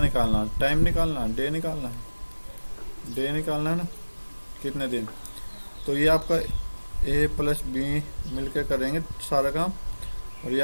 निकालना? टाइम निकालना, डे निकालना है, डे निकालना है ना, कितने दिन। तो ये आपका ए प्लस बी मिलकर करेंगे सारा काम, और ये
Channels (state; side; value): inverted; both; correlation -1.00